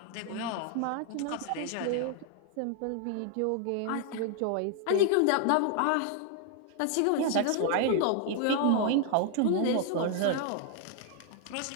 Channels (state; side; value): different; both; correlation 0.00